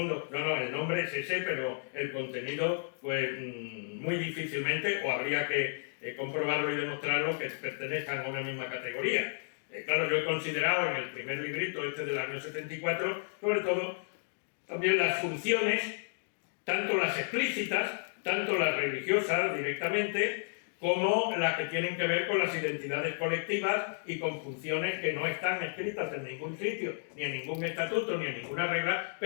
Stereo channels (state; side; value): silent; right; digital silence